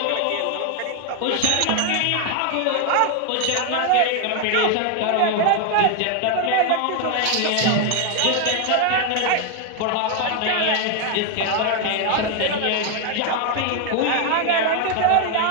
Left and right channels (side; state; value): both; different; correlation 0.01